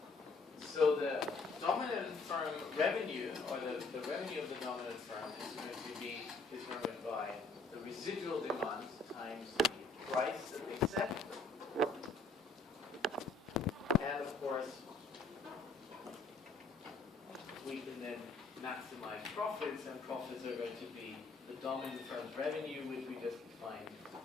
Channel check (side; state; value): right; quieter; 3.7 dB